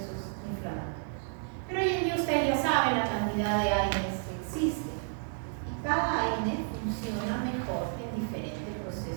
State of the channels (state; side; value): silent; left; 57 dB below the other